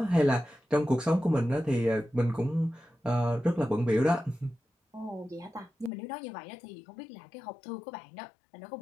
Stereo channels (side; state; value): right; drops out; at 5.9 s